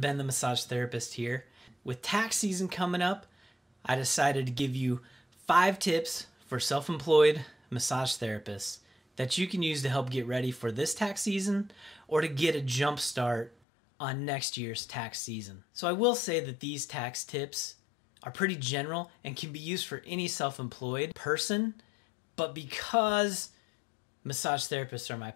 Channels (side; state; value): right; drops out; at 13.5 s